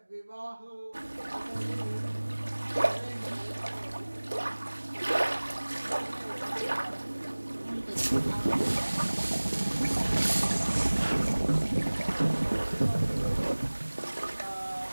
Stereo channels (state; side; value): inverted; both; correlation -1.00